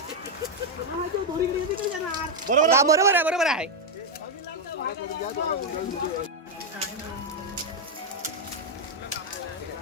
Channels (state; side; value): normal; both; correlation 0.01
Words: बरोबर आहे, बरोबर आहे.